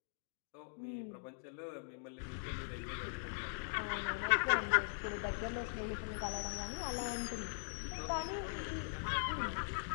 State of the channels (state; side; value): silent; right; digital silence